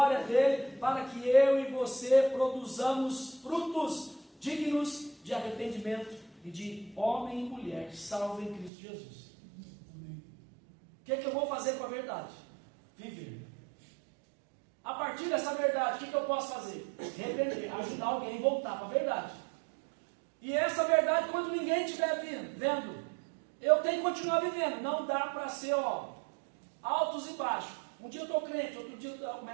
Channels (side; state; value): left; drops out; at 8.7 s